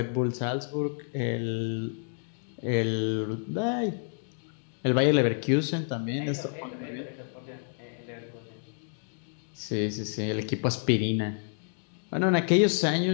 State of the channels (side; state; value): right; silent; 58 dB below the other